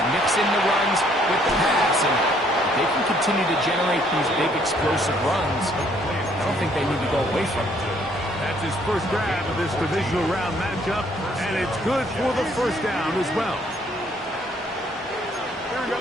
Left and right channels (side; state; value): both; normal; correlation 0.65